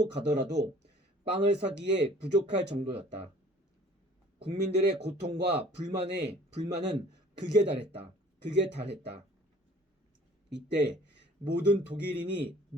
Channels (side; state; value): both; normal; correlation 0.52